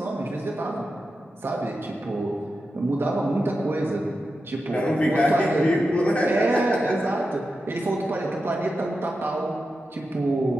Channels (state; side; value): normal; both; correlation 0.90